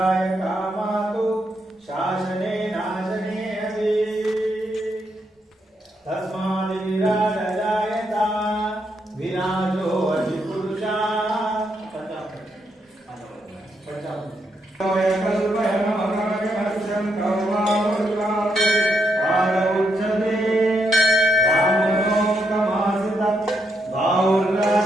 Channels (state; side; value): normal; both; correlation 0.79